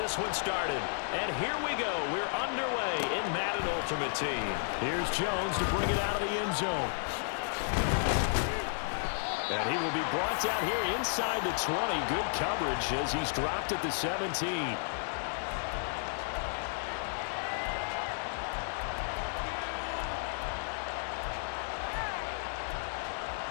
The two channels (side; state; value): right; silent; 56 dB below the other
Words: one started. And here we go. We're underway in Madden Ultimate Team. Here's Jones to bring it out of the end zone. And he will be brought down here inside the 20. Good coverage as he's dropped at the 17.